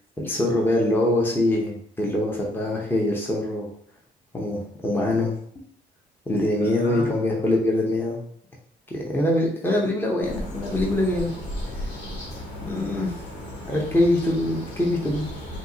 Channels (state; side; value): normal; both; correlation 0.72